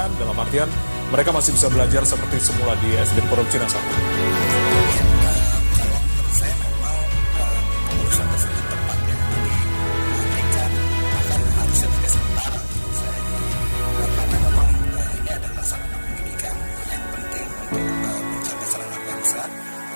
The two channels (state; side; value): inverted; both; correlation -1.00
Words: dalam artian mereka masih bisa belajar seperti semula di SDN Pondok Cina 1? Ya, kalau menurut saya memang keputusan tersebut tepat ya. Jadi menghentikan, bahkan harusnya tidak sementara menurut saya. Jadi karena memang ini adalah sarana pendidikan yang penting untuk pencerdasan anak bangsa.